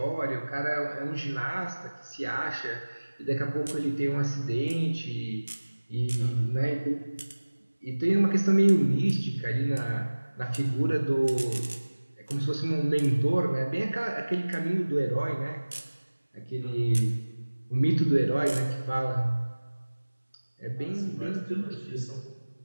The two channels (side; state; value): both; inverted; correlation -1.00